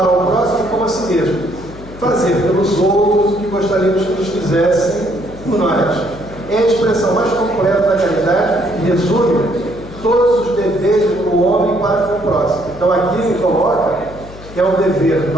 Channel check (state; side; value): noise; left; hum, 16 dB below the sound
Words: ao próximo como a si mesmo. Fazer pelos outros o que gostaríamos que nos fizessem por nós. É a expressão mais completa da caridade e resume todos os deveres do homem para com o próximo. Então aqui ele coloca que é um dever